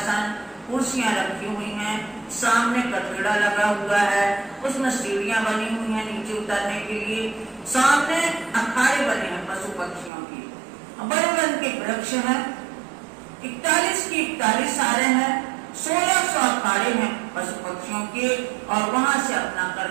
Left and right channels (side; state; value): left; drops out; at 10.1 s